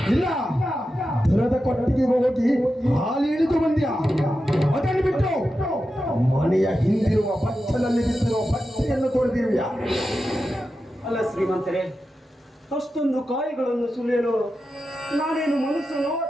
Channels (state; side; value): normal; both; correlation 0.90